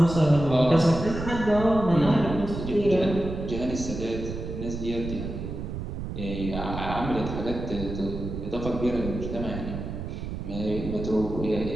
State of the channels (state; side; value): noise; right; rumble, 7 dB below the sound